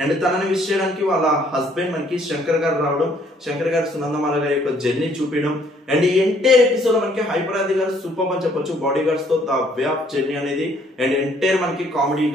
అండ్ తనని విష్ చేయడానికి వాళ్ళ హస్బెండ్ మనకి శంకర్ గారు రావడం, శంకర్ గారు సునందమాల గారి యొక్క జర్నీ చూపించడం. అండ్ ఈ ఎంటైర్ ఎపిసోడ్ లో మనకి హైపరాది గారు సూపర్ అని చెప్పొచ్చు. బాడీ గార్డ్స్ తో ద వే ఆఫ్ జర్నీ అనేది అండ్ ఎంటైర్ మనకి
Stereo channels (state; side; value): normal; both; correlation 0.64